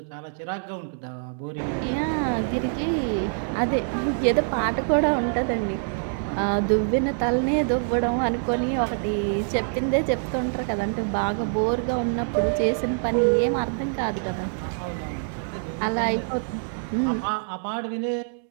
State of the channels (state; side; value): silent; left; digital silence